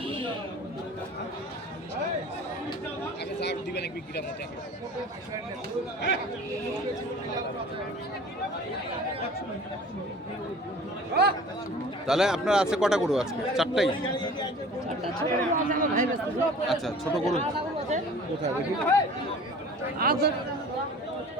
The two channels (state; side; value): normal; both; correlation 0.44